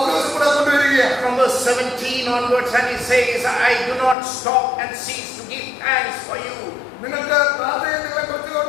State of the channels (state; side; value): drops out; right; at 4.2 s